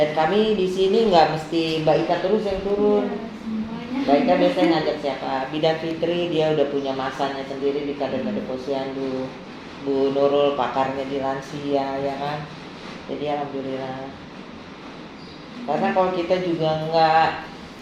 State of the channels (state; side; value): identical; both; correlation 1.00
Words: kami di sini nggak mesti Mbak Ika terus yang turun. Mbak Ika biasanya ngajak siapa? Bidan Fitri dia udah punya masanya sendiri di kader-kader posyandu. Bu Nurul pakarnya di lansia ya kan. Jadi alhamdulillah. Karena kalau kita juga nggak